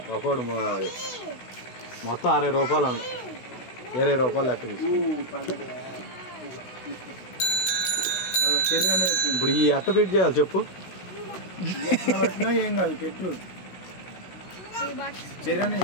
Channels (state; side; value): late; right; 16 ms